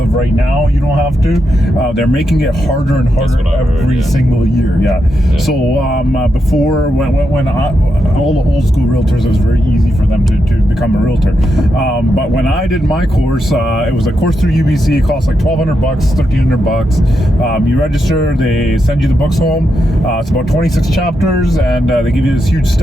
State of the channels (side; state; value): both; normal; correlation 0.84